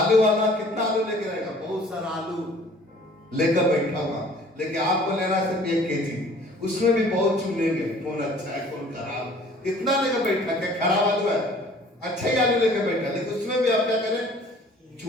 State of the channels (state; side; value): normal; both; correlation 0.52